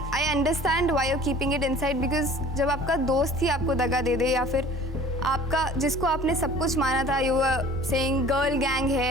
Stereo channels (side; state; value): both; normal; correlation 0.47